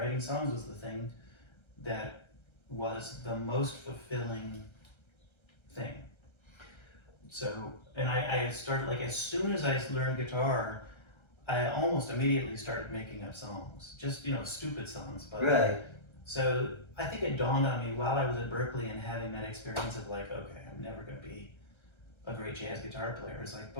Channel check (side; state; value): right; late; 1.3 ms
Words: songs was the thing that was the most fulfilling thing. So, and I started, like, as soon as I learned guitar, I almost immediately started making up songs. Just, you know, stupid songs. But Right. So I think it dawned on me while I was at Berkeley and having that experience of like, okay, I'm never going to be a great jazz guitar player. It's like,